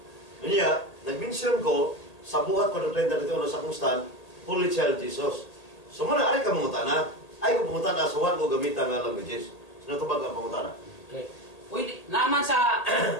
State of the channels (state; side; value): late; right; 1.8 ms